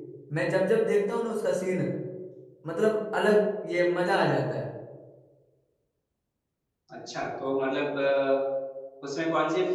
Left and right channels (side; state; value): both; identical; correlation 1.00